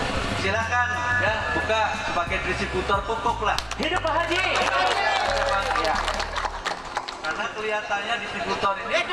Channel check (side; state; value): both; identical; correlation 1.00